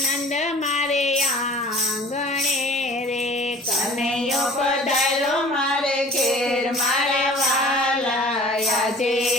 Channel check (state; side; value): normal; both; correlation 0.46